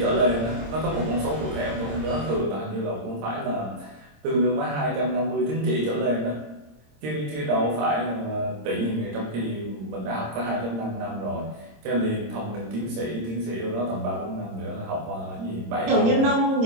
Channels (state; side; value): late; left; 26 ms